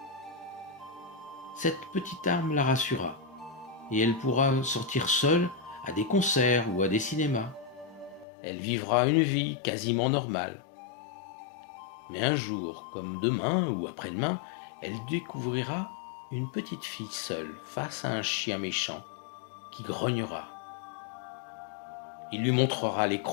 Cette petite arme la rassura et elle pourra sortir seule à des concerts ou à des cinémas. Elle vivra une vie quasiment normale. Mais un jour, comme demain ou après-demain, elle découvrira une petite fille seule face à un chien méchant qui grognera. Il lui montrera les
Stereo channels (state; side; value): drops out; right; at 8.2 s